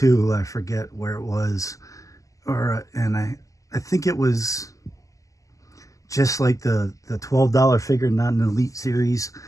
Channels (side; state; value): right; late; 0.16 ms